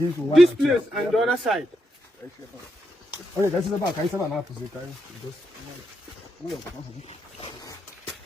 this place and the other side. Okay, this is about now.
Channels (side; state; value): both; normal; correlation 0.83